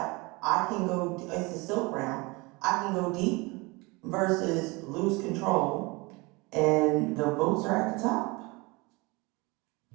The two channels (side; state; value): left; quieter; 25.3 dB